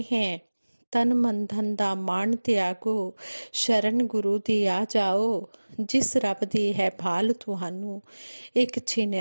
हैं, तन मन धन दा मान त्यागो, शरण गुरु दी आ जाओ, जिस रब दी है भाल तुहानू एक छिन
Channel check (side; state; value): both; inverted; correlation -1.00